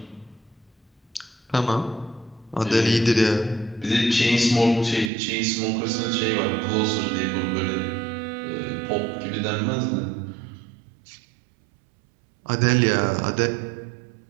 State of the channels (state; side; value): drops out; left; at 5.1 s